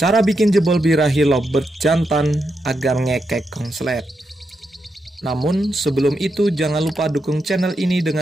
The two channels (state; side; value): normal; both; correlation 0.84